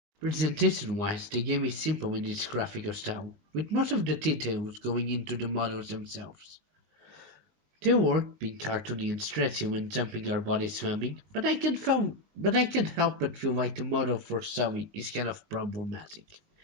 Presentation-wise, the game is simple in its graphical style, with most of the details going into the models themselves. They work being cartoony and stretchy when jumping or body swimming, but I can't help but feel like the model for Zoe is kind of problematic.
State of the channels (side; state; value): left; late; 20 ms